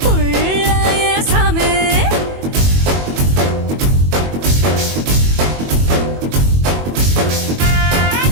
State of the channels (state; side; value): late; left; 21 ms